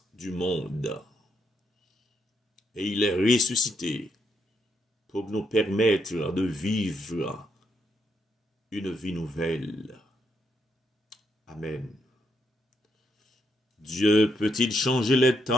du monde. Et il est ressuscité pour nous permettre de vivre une vie nouvelle. Amen. Dieu peut-il changer les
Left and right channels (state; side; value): normal; both; correlation 0.78